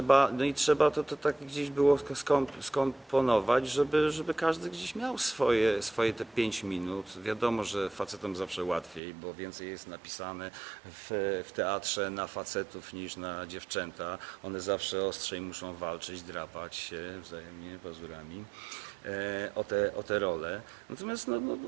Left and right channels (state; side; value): drops out; left; at 9.0 s